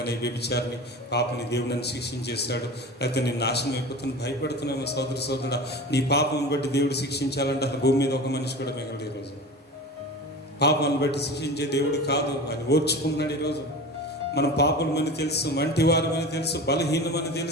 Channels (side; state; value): both; normal; correlation 0.33